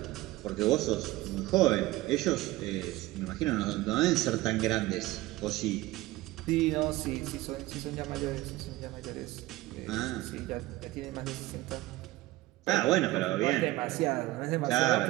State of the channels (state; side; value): quieter; left; 18.1 dB